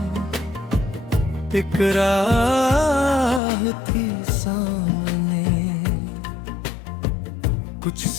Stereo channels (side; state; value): right; drops out; at 3.4 s